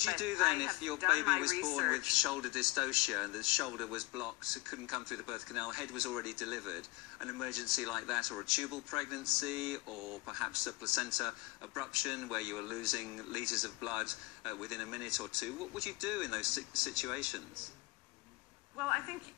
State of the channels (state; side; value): quieter; right; 22.4 dB